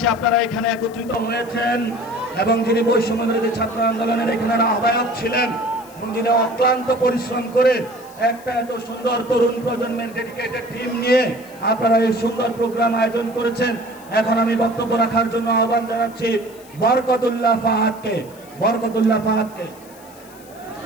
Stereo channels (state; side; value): noise; left; hiss, 23 dB below the sound